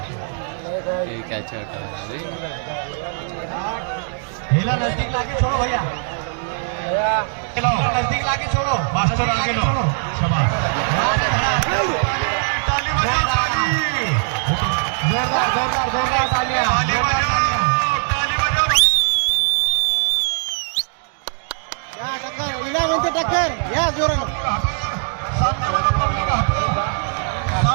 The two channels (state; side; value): silent; left; digital silence